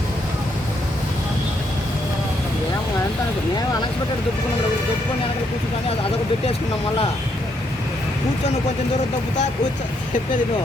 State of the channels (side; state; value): both; normal; correlation 0.75